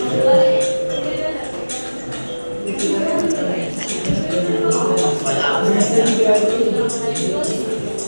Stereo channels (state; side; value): inverted; both; correlation -1.00